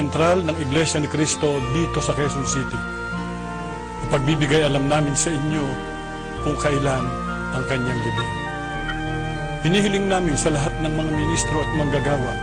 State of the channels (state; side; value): identical; both; correlation 1.00